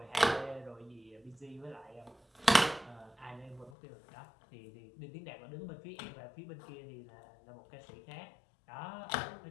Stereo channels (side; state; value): right; drops out; at 3.7 s